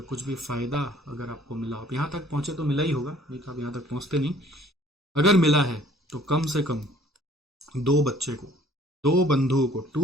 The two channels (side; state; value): both; normal; correlation 0.56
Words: कुछ भी फ़ायदा अगर आपको मिला, आप यहाँ तक पहुँचे तो मिला ही होगा, नहीं तो आप यहाँ तक पहुँचते नहीं। अगर मिला है तो कम से कम 2 बच्चे को, 2 बंधुओं को,